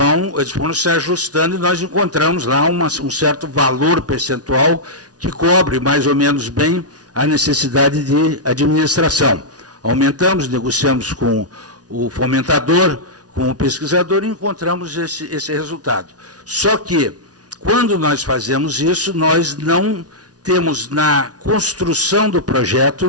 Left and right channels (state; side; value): late; left; 0.68 ms